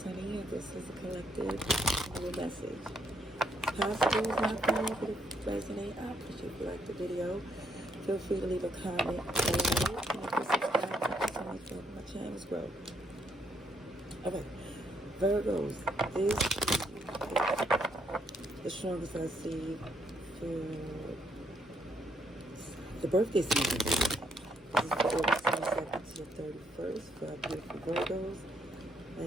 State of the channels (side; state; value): both; normal; correlation 0.73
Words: and this is a collective little message. Possible is not for you, but if it resonate, I appreciate if you like the video. Feel free to leave a comment below, and if you subscribe, thank you so much for my channel's growth. Alright, Virgos, this is the strongest I see for the birthday season. This is for August 22nd to the 31st for our beautiful Virgos.